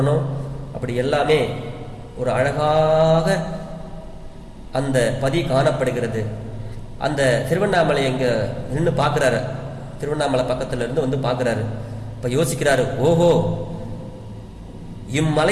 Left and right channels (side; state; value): both; identical; correlation 1.00